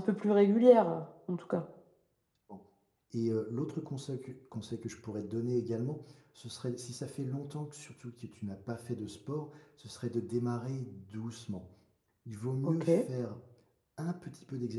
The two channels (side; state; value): both; identical; correlation 1.00